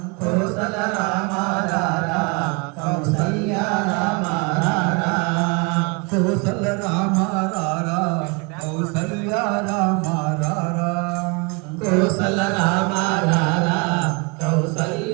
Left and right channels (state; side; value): quieter; left; 29.8 dB